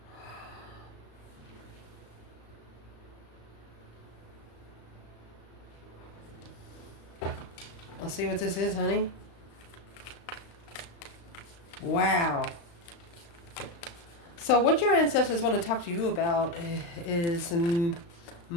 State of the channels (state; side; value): late; right; 35 ms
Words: Let's see what this is, honey. Wow. So what your ancestors want to talk to you about is